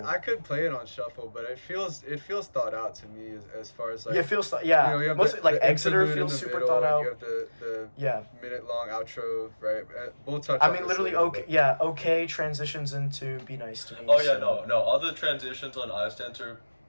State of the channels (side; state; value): both; inverted; correlation -1.00